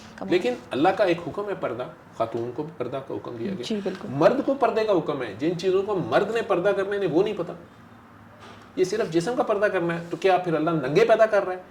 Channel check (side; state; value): both; identical; correlation 1.00